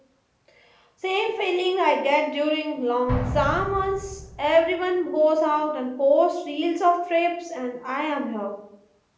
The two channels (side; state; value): both; identical; correlation 1.00